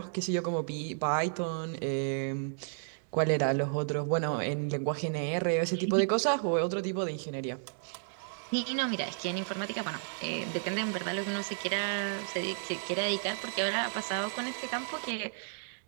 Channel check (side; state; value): left; silent; digital silence